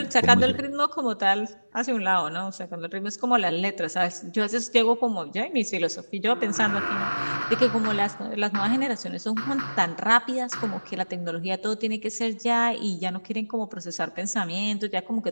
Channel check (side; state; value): both; inverted; correlation -1.00